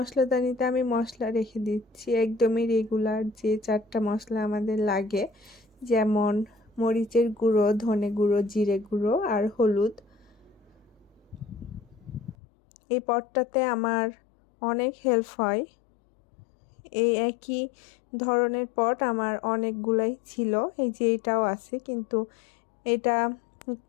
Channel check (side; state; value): right; drops out; at 12.4 s